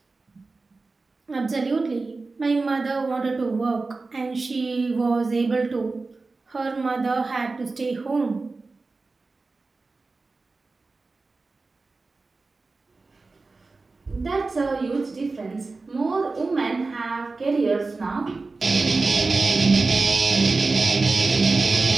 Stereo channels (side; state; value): left; quieter; 3.8 dB